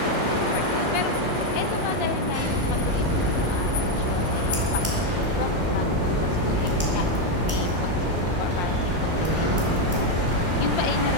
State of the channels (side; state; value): both; normal; correlation 0.05